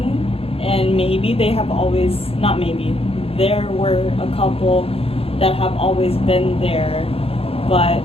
and maybe they have always, not maybe, there were a couple that have always been there, but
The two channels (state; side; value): late; right; 0.28 ms